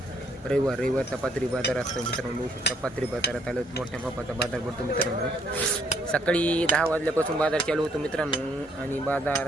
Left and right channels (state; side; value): normal; both; correlation 0.68